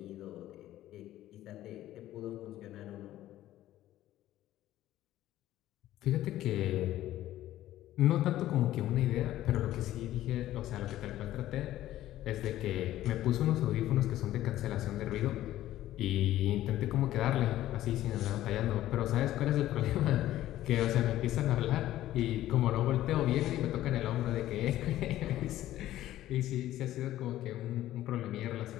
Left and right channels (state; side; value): quieter; right; 14.0 dB